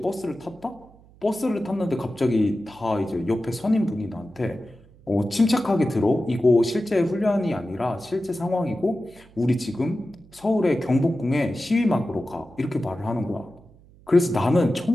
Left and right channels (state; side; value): noise; right; hum, 26 dB below the sound